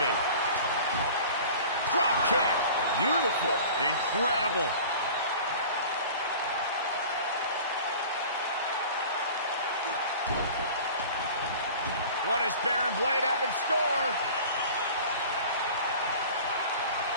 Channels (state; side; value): inverted; both; correlation -0.41